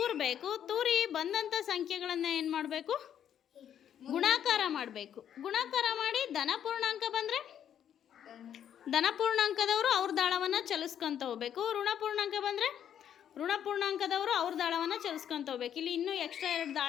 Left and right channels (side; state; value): right; quieter; 9.5 dB